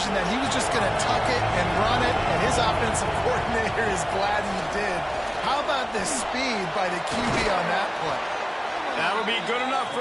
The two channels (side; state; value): both; identical; correlation 1.00